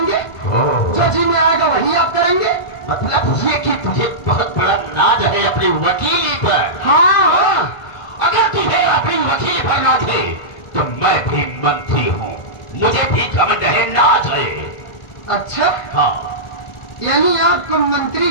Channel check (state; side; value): late; right; 1.5 ms